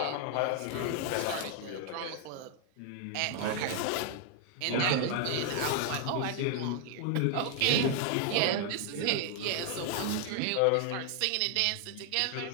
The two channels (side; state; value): both; different; correlation 0.00